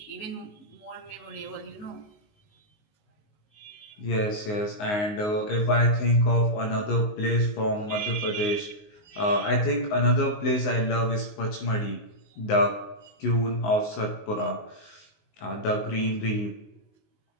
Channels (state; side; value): late; right; 19 ms